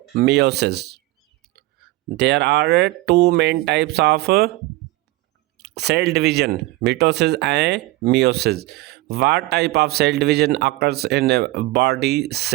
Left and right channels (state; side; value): quieter; left; 19.5 dB